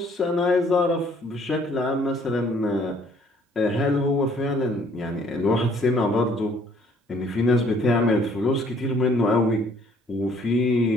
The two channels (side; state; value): both; normal; correlation 0.61